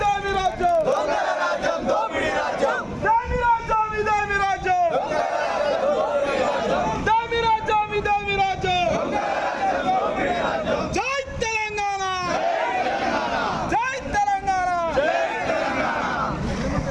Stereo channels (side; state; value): both; identical; correlation 1.00